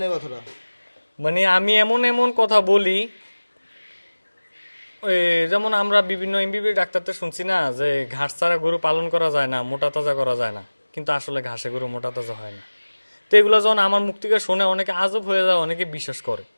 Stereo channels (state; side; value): inverted; both; correlation -1.00